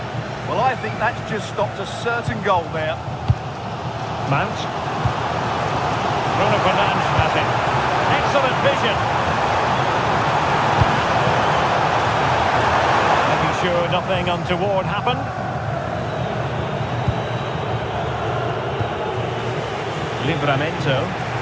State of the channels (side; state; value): both; identical; correlation 1.00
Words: Well, I think that's just stopped a certain goal there. Mount. Bruno Fernandes has it. Excellent vision. Making sure nothing untoward happened. Livramento.